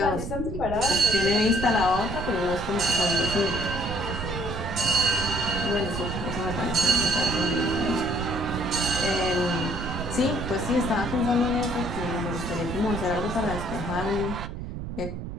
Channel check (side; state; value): right; noise; rumble, 7 dB below the sound